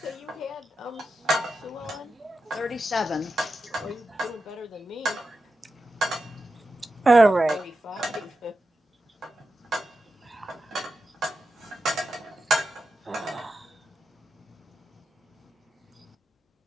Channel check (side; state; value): both; normal; correlation 0.90